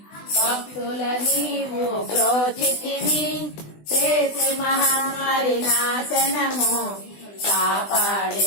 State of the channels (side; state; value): right; late; 20 ms